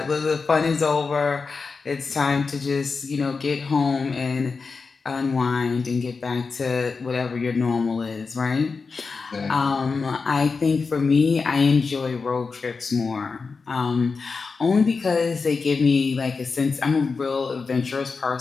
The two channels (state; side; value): quieter; right; 4.7 dB